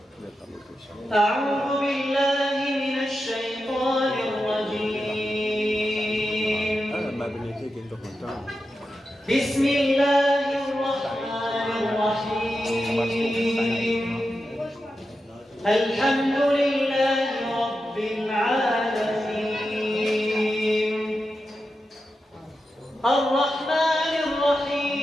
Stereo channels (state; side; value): normal; both; correlation 0.90